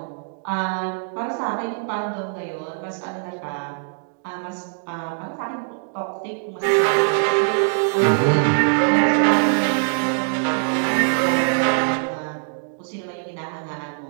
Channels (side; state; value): left; silent; digital silence